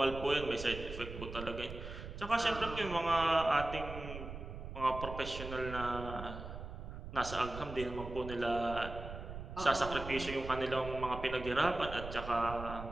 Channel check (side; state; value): right; noise; rumble, 9 dB below the sound